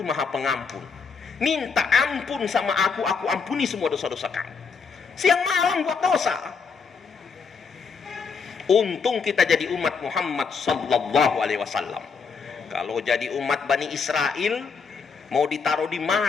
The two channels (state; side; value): quieter; right; 5.5 dB